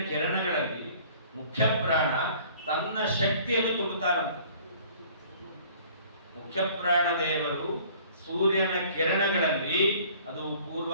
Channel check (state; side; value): inverted; both; correlation -0.52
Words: ಕಿರಣಗಳಲ್ಲಿ ಮುಖ್ಯ ಪ್ರಾಣ ತನ್ನ ಶಕ್ತಿಯನ್ನು ತುಂಬುತ್ತಾರಂತೆ. ಮುಖ್ಯ ಪ್ರಾಣ ದೇವರು ಸೂರ್ಯನ ಕಿರಣಗಳಲ್ಲಿ, ಅದು ಪೂರ್ವ